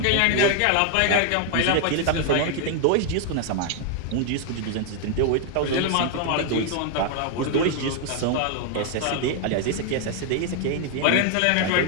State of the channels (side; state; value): both; different; correlation 0.00